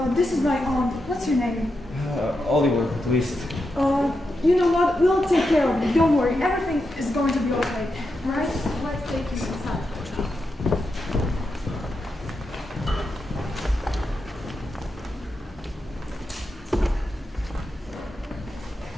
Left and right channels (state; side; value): normal; both; correlation 0.86